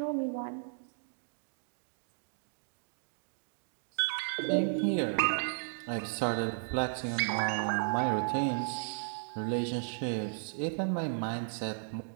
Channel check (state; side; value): silent; left; digital silence